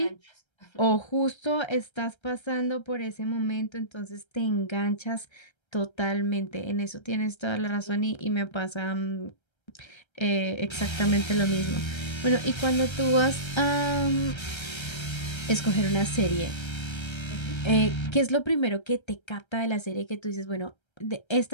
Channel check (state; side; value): late; right; 1.3 ms